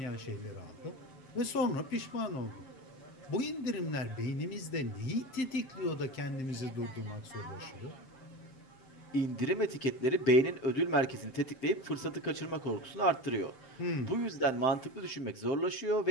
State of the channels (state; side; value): late; right; 7.6 ms